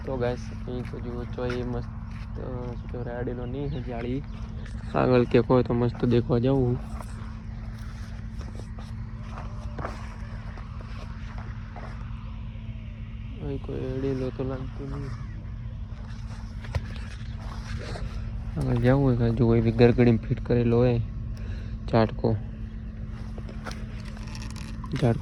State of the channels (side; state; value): both; identical; correlation 1.00